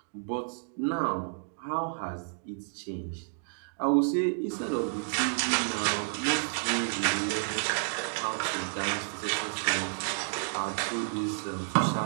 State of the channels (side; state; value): left; silent; digital silence